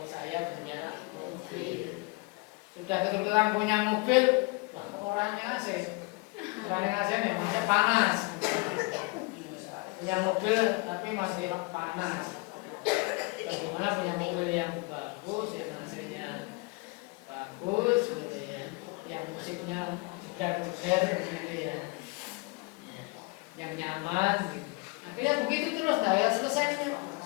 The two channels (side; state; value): right; quieter; 26.5 dB